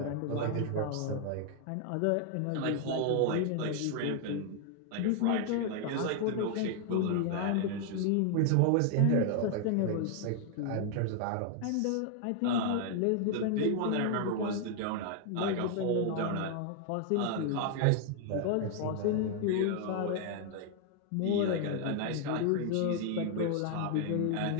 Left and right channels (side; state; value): both; different; correlation 0.00